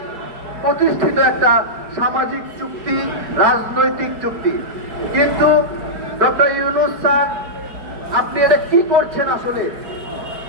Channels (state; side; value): late; left; 4.7 ms